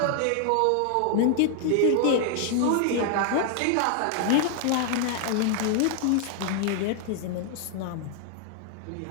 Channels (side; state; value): both; different; correlation 0.00